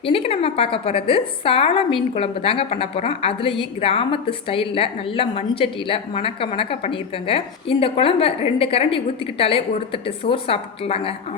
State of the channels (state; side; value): quieter; right; 6.1 dB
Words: இன்றைக்கி நம்ம பார்க்க போகிறது சால மீன் குழம்பு தாங்க பண்ண போகிறோம். அதுலேயும் கிராமத்து ஸ்டைலில் நல்ல மண்சட்டியில் மணக்க மணக்க பண்ணியிருக்கேங்க. இந்த குழம்பை 2 கரண்டி ஊற்றிக்கிட்டாலே ஒரு தட்டு சோறு சாப்பிட்டுலாங்க.